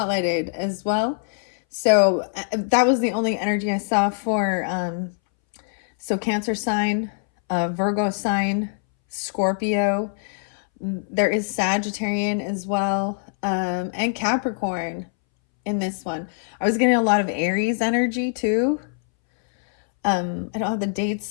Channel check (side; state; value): right; silent; 62 dB below the other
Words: as well. So that was the only energy I saw for so Cancer sign, Virgo sign, Scorpio. There is Sagittarian as well, and Capricorn in this one. I was getting a lot of Aries energy too. I don't have the